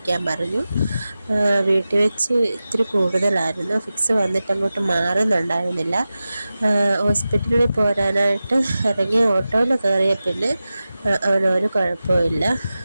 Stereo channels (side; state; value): both; inverted; correlation -0.94